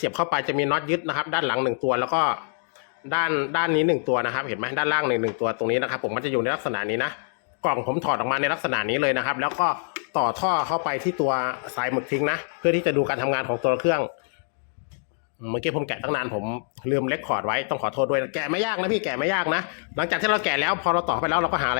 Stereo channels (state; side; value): silent; right; digital silence